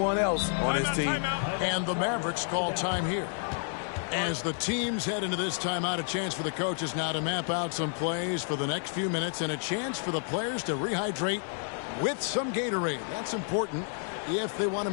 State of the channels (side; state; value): right; silent; 58 dB below the other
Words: else on his team. And the Mavericks call time here. As the teams head into this timeout, a chance for the coaches now to map out some plays for the next few minutes and a chance for the players to rehydrate with some Gatorade. That's important if they want to